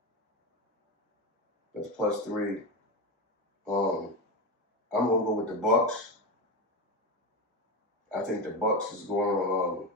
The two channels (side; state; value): both; normal; correlation 0.17